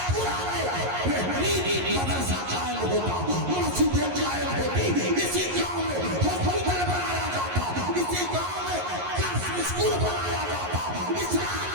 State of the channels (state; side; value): late; left; 11 ms